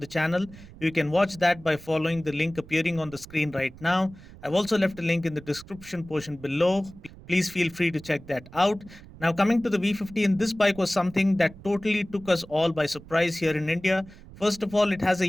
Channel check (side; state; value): right; noise; rumble, 19 dB below the sound